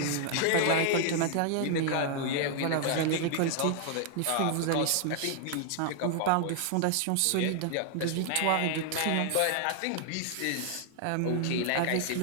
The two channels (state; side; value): different; both; correlation 0.00